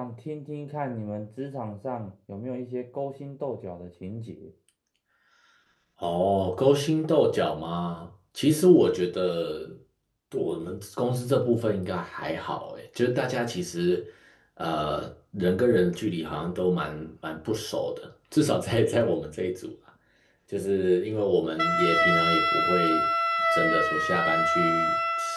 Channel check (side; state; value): both; identical; correlation 1.00